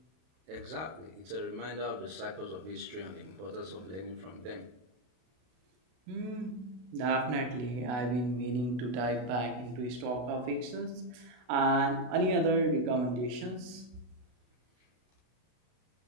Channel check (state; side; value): late; left; 32 ms